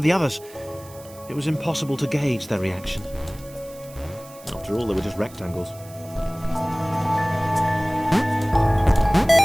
the others. It was impossible to gauge their reaction. After all, they were just rectangles.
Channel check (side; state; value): right; noise; hiss, 21 dB below the sound